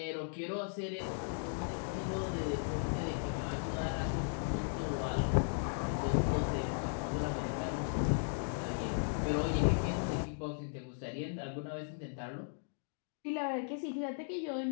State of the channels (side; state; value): right; silent; digital silence